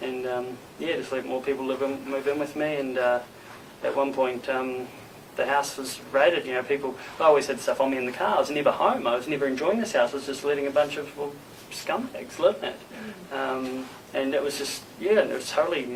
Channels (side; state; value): both; identical; correlation 1.00